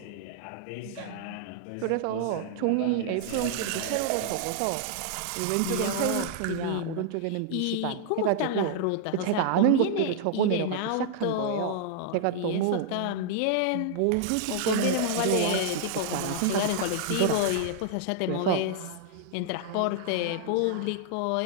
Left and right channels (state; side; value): different; both; correlation -0.01